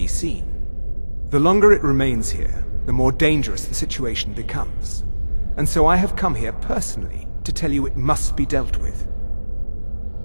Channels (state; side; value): inverted; both; correlation -1.00